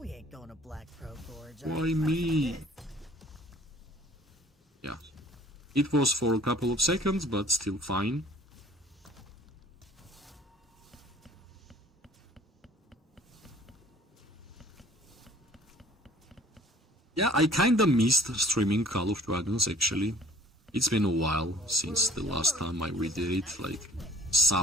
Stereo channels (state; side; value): normal; both; correlation 0.51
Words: ain't going to Black Pro Gorge. Why me? Yeah. It was for a couple of seconds, but still fine. Yeah, I kinda missed streaming Call of Dragons, actually. It's been a while since the last time we did it, like